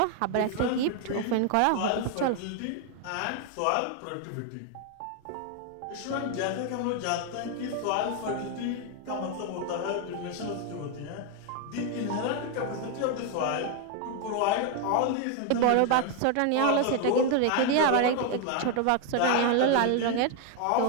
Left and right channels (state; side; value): different; both; correlation 0.01